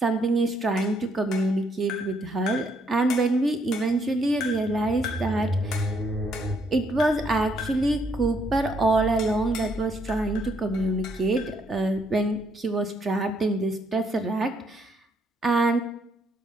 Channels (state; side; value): normal; both; correlation 0.72